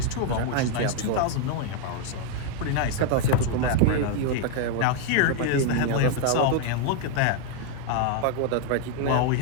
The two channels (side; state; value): both; different; correlation 0.00